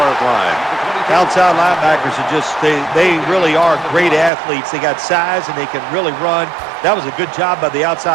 line. Outside linebackers are just, they really are great athletes. They got size and they can really run. That was a good job by the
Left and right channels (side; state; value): left; drops out; at 4.3 s